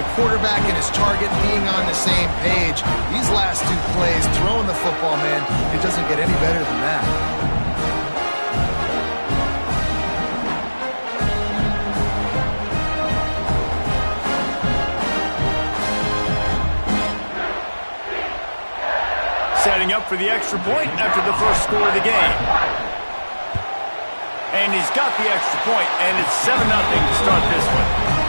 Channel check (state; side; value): inverted; both; correlation -1.00